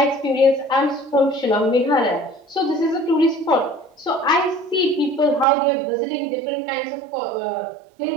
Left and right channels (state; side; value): drops out; left; at 5.5 s